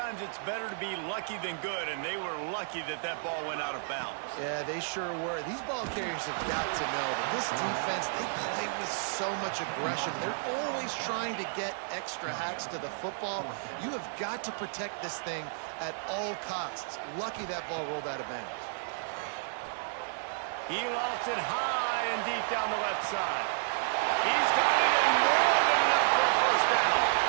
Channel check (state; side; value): silent; left; digital silence